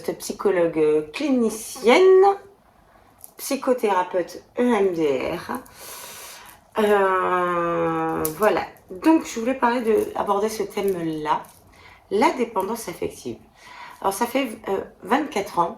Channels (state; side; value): identical; both; correlation 1.00